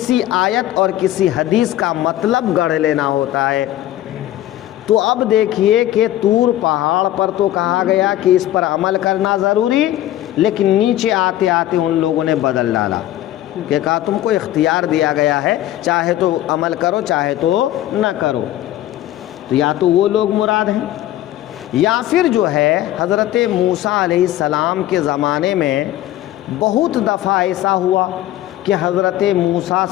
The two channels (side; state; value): right; quieter; 13.8 dB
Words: آیت اور کسی حدیث کا مطلب گڑھ لینا ہوتا ہے۔ تو اب دیکھیے کہ طور پہاڑ پر تو کہا گیا کہ اس پر عمل کرنا ضروری، لیکن نیچے آتے آتے ان لوگوں نے بدل ڈالا کہ کہا تم کو اختیار دیا گیا ہے، چاہے تو عمل کرو چاہے تو نہ کرو۔ تو یا تو وہ لوگ مراد ہیں، یا پھر جو ہے حضرت موسیٰ علیہ السلام کے زمانے میں بہت دفعہ ایسا ہوا کہ حضرت موسیٰ